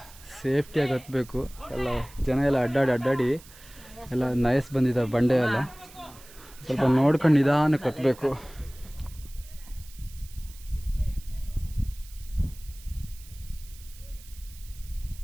ಸೇಫ್ಟಿಯಾಗಿ ಹತ್ತಬೇಕು. ಎಲ್ಲ ಜನ ಎಲ್ಲ ಅಡ್ಡಾಡಿ ಎಲ್ಲ ನಯಸ್ ಬಂದಿದ್ದಾರೆ ಬಂಡೆ ಎಲ್ಲ. ಸ್ವಲ್ಪ ನೋಡ್ಕೊಂಡು ನಿಧಾನಕ್ಕೆ ಹತ್ತಬೇಕು.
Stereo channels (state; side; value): noise; right; hiss, 21 dB below the sound